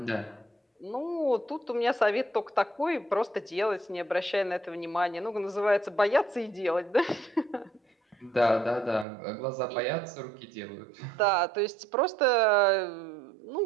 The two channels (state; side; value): drops out; left; at 9.1 s